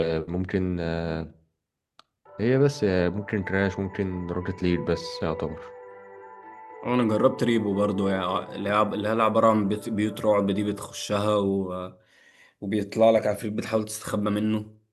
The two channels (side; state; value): both; identical; correlation 1.00